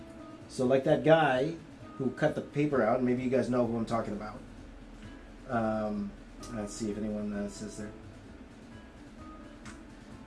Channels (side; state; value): both; identical; correlation 1.00